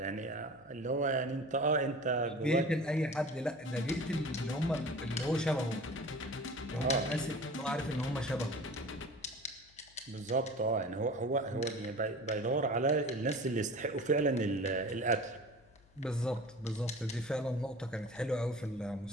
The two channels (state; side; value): noise; left; hum, 29 dB below the sound